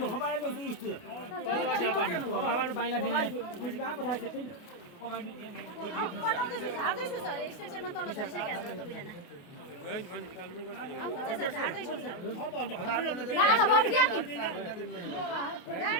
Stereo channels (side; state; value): right; late; 28 ms